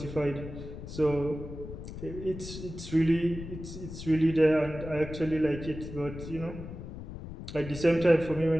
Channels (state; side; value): noise; left; rumble, 10 dB below the sound